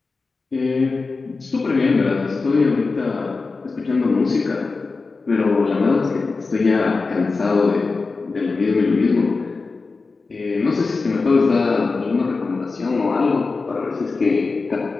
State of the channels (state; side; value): quieter; right; 4.1 dB